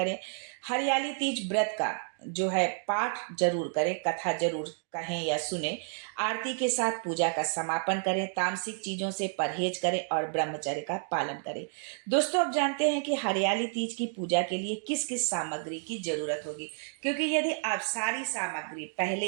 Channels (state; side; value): silent; left; 57 dB below the other